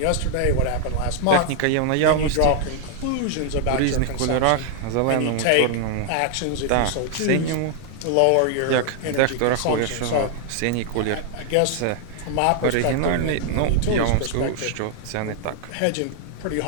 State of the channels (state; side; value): different; both; correlation 0.00